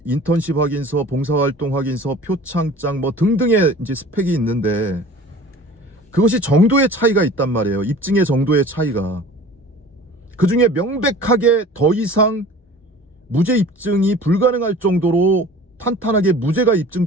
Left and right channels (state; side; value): normal; both; correlation 0.43